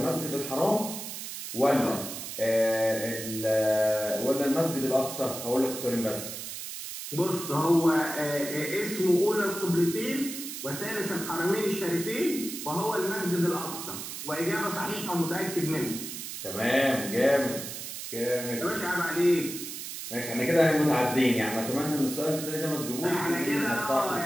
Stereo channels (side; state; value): right; noise; hiss, 8 dB below the sound